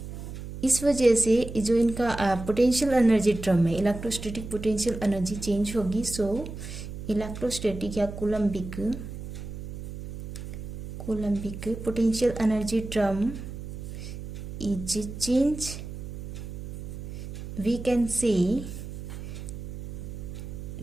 इस वजह से जो इनका potential energy term है, electrostatic potential energy change होगी। So electrostatic या coulombic potential energy term is change. We can say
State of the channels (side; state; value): right; noise; hum, 9 dB below the sound